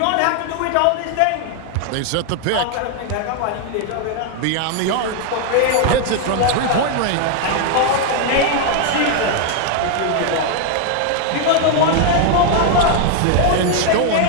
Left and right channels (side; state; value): both; different; correlation 0.00